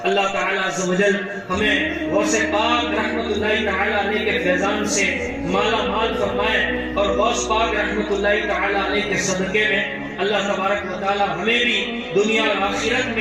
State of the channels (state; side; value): identical; both; correlation 1.00